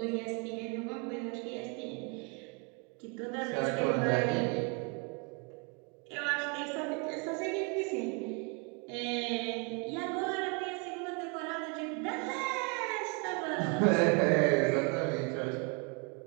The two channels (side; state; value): left; quieter; 34.1 dB